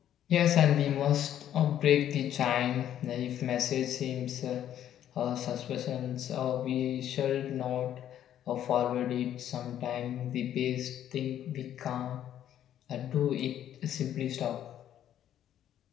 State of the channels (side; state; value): right; quieter; 10.9 dB